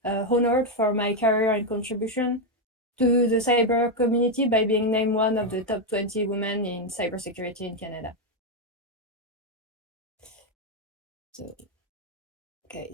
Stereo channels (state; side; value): normal; both; correlation 0.04